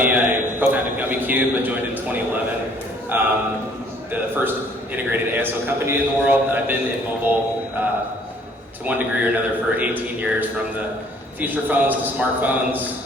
I co-founded Gummicube. I joined in 2011. The first integrated ASO company in the world. I've been in mobile to one degree or another for 18 years, from the feature phones to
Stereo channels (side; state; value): both; normal; correlation 0.59